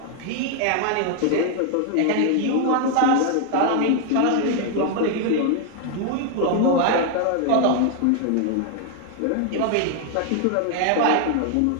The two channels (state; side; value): different; both; correlation 0.00